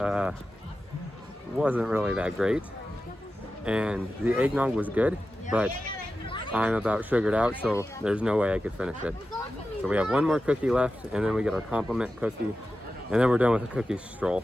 Wasn't really that great. And the eggnog was good, but I'm about sugared out, so there's no way I could finish it. So we have one more cookie left, and then we get our compliment cookie, and then we're done with the cookie stroll,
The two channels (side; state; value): both; normal; correlation 0.92